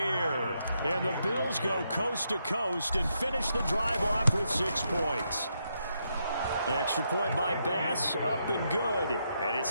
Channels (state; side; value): inverted; both; correlation -0.80